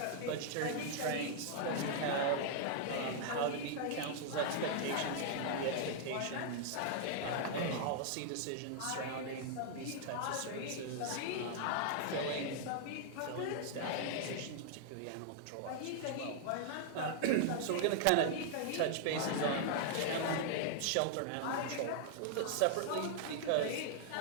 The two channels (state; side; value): different; both; correlation -0.01